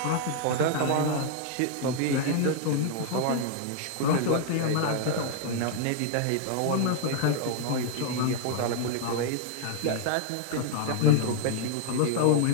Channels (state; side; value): different; both; correlation 0.00